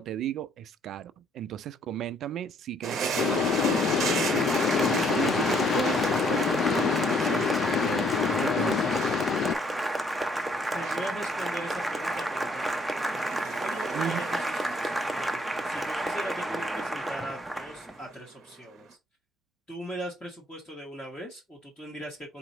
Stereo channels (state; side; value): normal; both; correlation 0.66